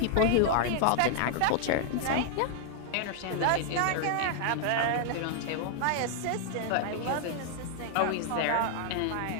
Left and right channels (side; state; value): both; different; correlation 0.00